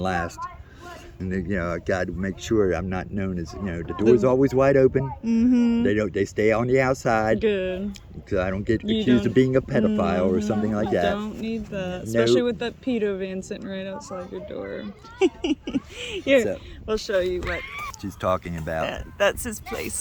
And I got to make sure I'm not known as, the door's always wide open. Mm-hmm. They stay on the outside. Good. Because I don't get accused of being a pedophile or something like that. Don't need that. Especially with that pedo van sitting right outside your door. Here, we'll show you what she's talking about. That's his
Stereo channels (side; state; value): both; identical; correlation 1.00